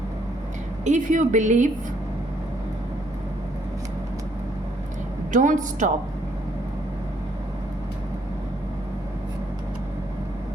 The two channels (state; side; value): normal; both; correlation 0.69